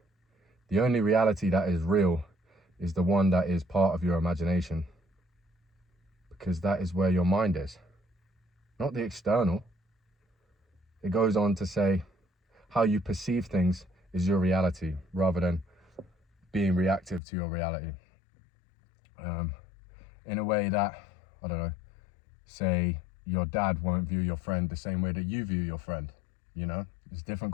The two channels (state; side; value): drops out; right; at 17.2 s